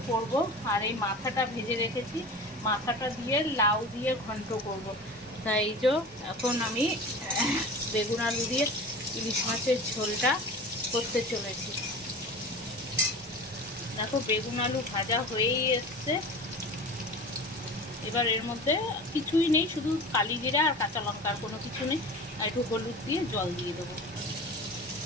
করব। আর এই মাথাটা ভেজে রেখেছি, মাথাটা দিয়ে লাউ দিয়ে ঘন্ট করব। তাই যে এখন আমি বেগুন আলু দিয়ে ইলিশ মাছের ঝোলটা করতে চলেছি। দেখো বেগুন আলু ভাজা হয়েই এসছে। এবার এর মধ্যে কিছুই নেই, শুধু কালি জিরা আর কাঁচা লঙ্কা, আর কোনো কিছু নেই। আর একটু হলুদ দিয়ে জল দিয়ে দেবো।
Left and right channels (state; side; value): normal; both; correlation 0.35